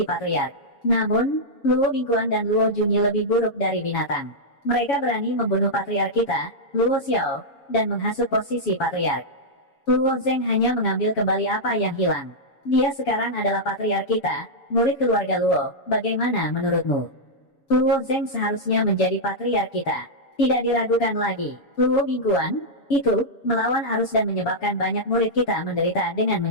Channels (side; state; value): right; late; 7.1 ms